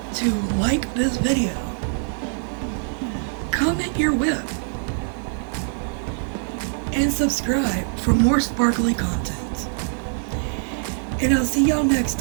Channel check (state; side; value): silent; left; digital silence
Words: to like this video, comment your WIP, and subscribe for more sparkly content. And I'll see y'all next